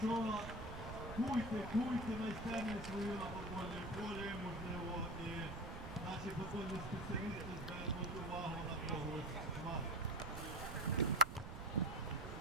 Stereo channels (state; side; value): noise; right; rumble, 8 dB below the sound